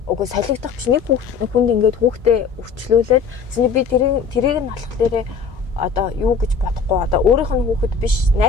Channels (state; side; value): quieter; right; 5.6 dB